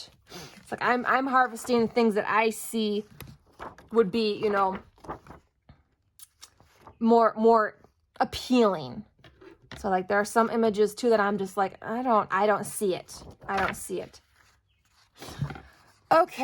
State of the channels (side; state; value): both; identical; correlation 1.00